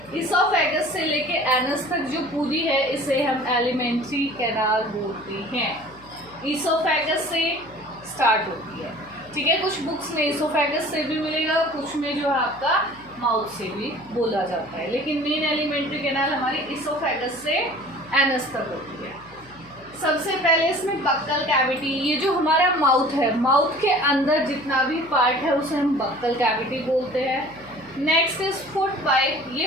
इसोफेगस से लेके एनस तक जो पूरी है इसे हम एलिमेंट्री कैनाल बोलते हैं। इसोफेगस से स्टार्ट होती है। ठीक है, कुछ बुक्स में इसोफेगस से भी मिलेगा, कुछ में जो है आपका माउथ से भी बोला जाता है, लेकिन मेन एलिमेंट्री कैनाल हमारी इसोफेगस से एनस तक होती है। सबसे पहले इसमें बक्कल कैविटी, ये जो हमारा माउथ है, माउथ के अंदर जितना भी पार्ट है उसे हम बक्कल कैविटी बोलते हैं। नेक्स्ट इज फूड पाइप,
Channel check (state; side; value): noise; left; hum, 25 dB below the sound